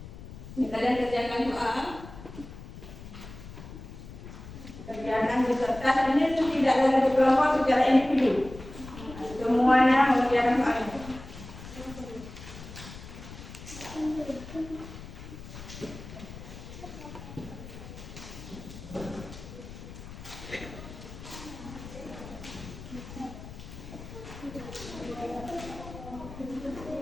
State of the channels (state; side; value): noise; left; rumble, 13 dB below the sound